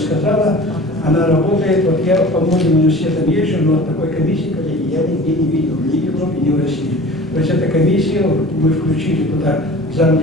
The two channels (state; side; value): normal; both; correlation 0.41